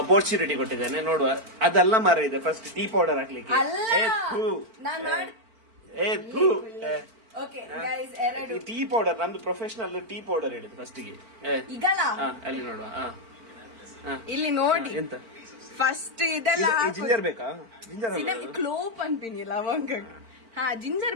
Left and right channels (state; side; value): late; left; 4.5 ms